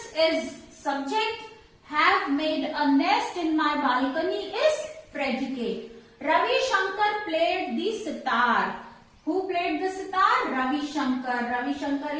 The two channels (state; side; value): identical; both; correlation 1.00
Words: is subject, have made a nest in my balcony is predicate. Ravi Shankar played the sitar. Who played the sitar? Ravi Shankar. Ravi Shankar